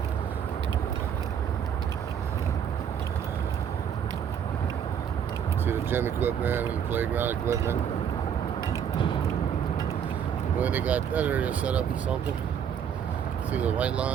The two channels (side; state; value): left; quieter; 8.4 dB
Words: See the gym equipment and the playground equipment. Well, they got that area set up for something. See the white